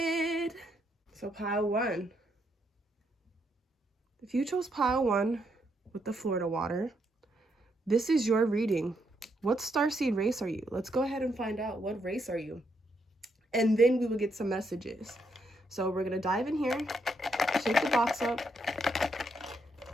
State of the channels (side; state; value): both; normal; correlation 0.77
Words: So pile 1. If you chose pile 1 with the Florida water, this is your reading. What Starseed race are you? Let's go ahead and find out. What race are you? And then we will get some messages. So we're going to dive in here, shake the box up.